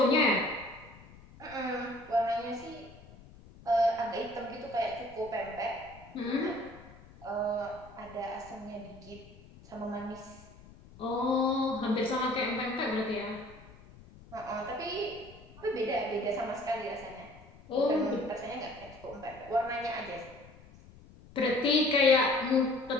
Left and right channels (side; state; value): left; noise; rumble, 21 dB below the sound